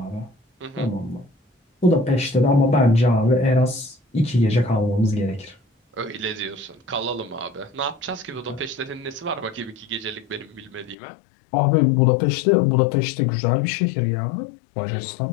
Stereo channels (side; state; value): right; drops out; at 11.0 s